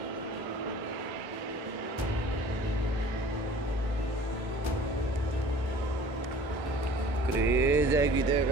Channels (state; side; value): normal; both; correlation 0.48